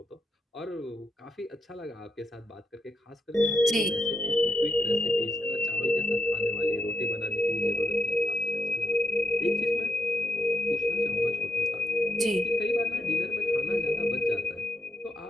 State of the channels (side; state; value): both; normal; correlation 0.79